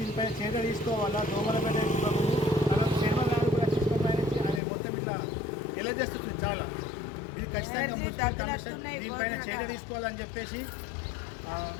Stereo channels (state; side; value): drops out; right; at 4.6 s